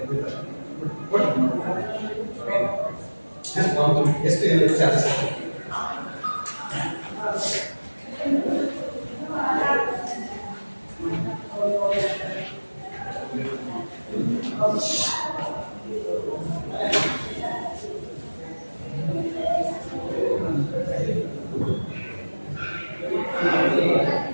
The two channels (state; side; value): inverted; both; correlation -1.00